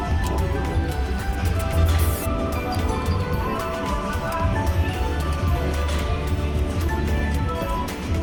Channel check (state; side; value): identical; both; correlation 1.00